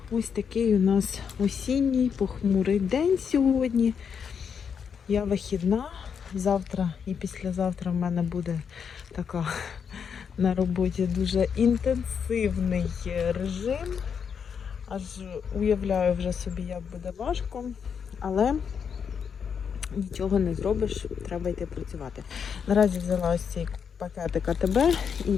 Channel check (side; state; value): right; quieter; 6.9 dB